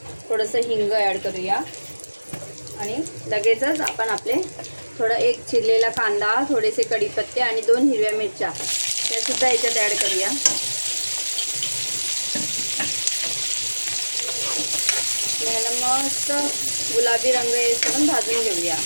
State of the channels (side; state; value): both; inverted; correlation -1.00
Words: थोडंसं हिंग ॲड करूया आणि लगेचच आपण आपले एक चिरलेला कांदा, थोडेसे कढीपत्ते आणि 2 हिरव्या मिरच्या त्यासुद्धा ह्याच्यात ॲड करूया. ह्याला मस्त गुलाबी रंग येईपर्यंत भाजून घेऊया.